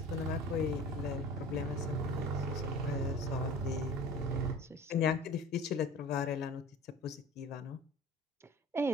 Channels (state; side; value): normal; both; correlation 0.40